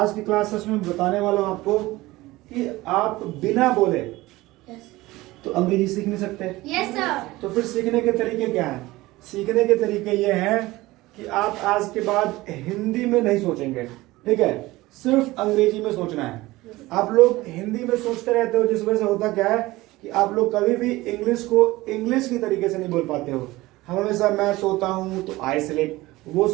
की क्लास है उसमें बताने वाला हूँ आपको कि आप बिना बोले तो अंग्रेजी सीख नहीं सकते। Yes sir. तो फिर सीखने के तरीके क्या हैं? सीखने के तरीके ये हैं कि आप आज के बाद हिंदी में नहीं सोचेंगे, ठीक है, सिर्फ अंग्रेजी में सोचना है। आप लोग हिंदी में सोचते रहते हो, जिस वजह से होता क्या है कि आप लोग कभी भी इंग्लिश को इंग्लिश की तरीके से नहीं बोल पाते हो। हम हमेशा मैं सोता हूँ तो आई स्लिप, वो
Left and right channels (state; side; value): quieter; left; 19.1 dB